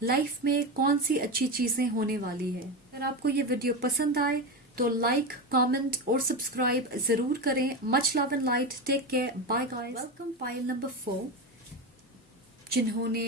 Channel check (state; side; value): normal; both; correlation 0.18